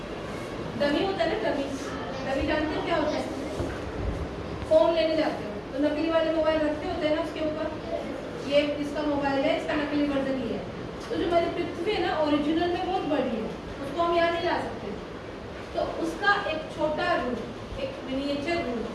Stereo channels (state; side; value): identical; both; correlation 1.00